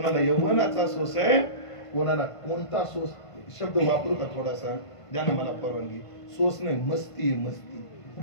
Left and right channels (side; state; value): right; late; 1.5 ms